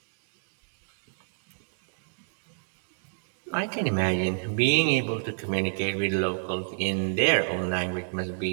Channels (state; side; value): silent; left; digital silence